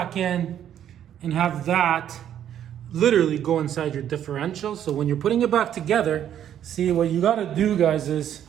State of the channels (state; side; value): quieter; left; 10.2 dB